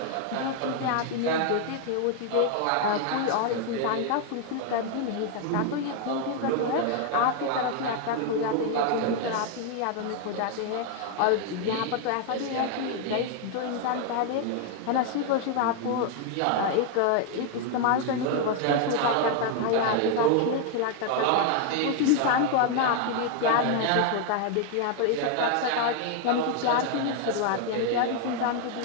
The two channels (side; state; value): both; different; correlation 0.00